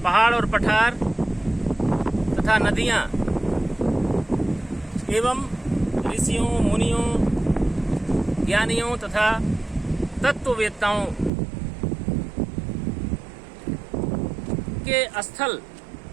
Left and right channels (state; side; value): drops out; left; at 11.3 s